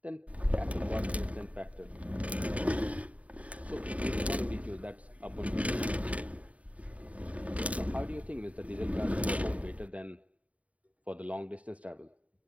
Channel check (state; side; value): late; left; 0.067 ms